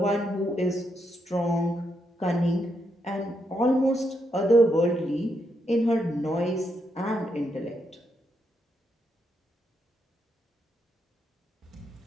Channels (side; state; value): both; normal; correlation 0.80